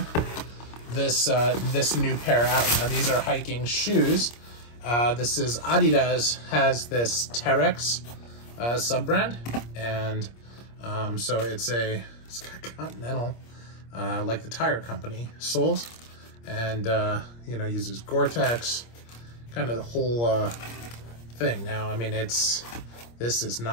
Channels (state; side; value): late; right; 25 ms